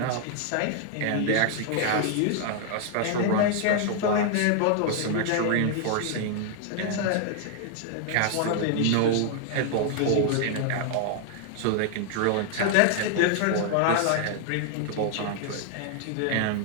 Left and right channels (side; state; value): both; different; correlation 0.00